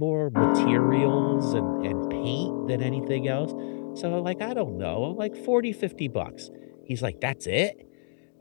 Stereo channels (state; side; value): silent; right; digital silence